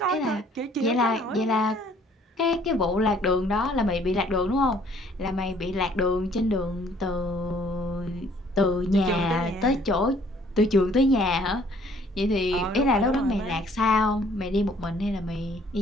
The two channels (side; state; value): both; normal; correlation 0.60